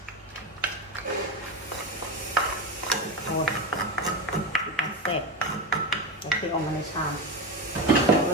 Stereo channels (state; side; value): normal; both; correlation 0.16